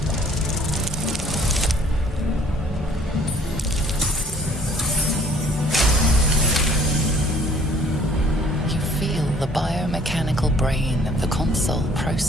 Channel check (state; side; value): normal; both; correlation 0.57